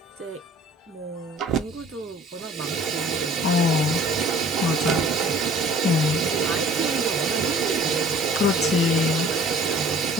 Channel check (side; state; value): both; normal; correlation 0.51